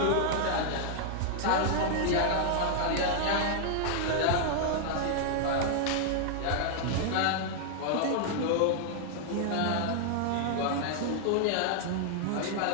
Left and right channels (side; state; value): both; different; correlation -0.01